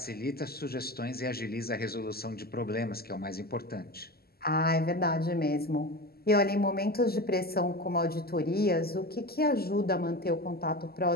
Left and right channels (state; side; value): late; right; 0.45 ms